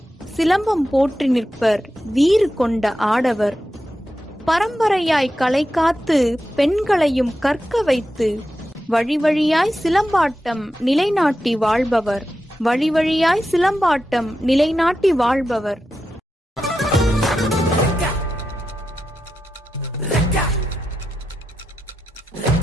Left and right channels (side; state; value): both; normal; correlation 0.89